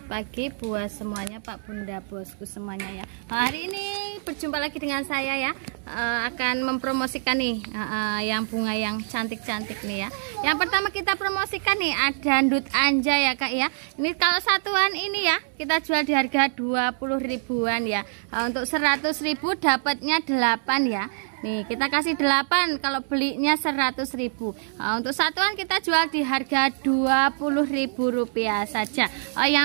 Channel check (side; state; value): left; silent; digital silence